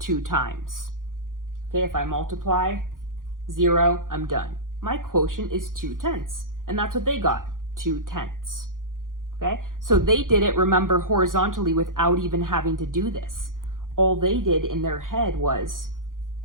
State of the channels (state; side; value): late; left; 0.90 ms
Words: times. Okay, if I multiply 0, I'm done. My quotient is 2/10, and that's what they got, 2/10. Okay, so they did it, remember, horizontally without even having to do this. All they did in their head was